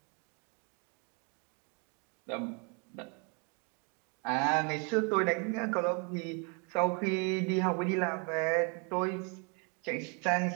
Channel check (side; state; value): left; quieter; 35.7 dB